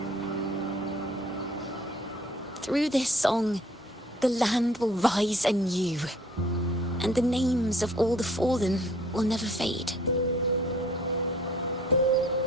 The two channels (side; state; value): both; normal; correlation 0.56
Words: Through this song, the land will rise anew, and the names of all the fallen will never fade.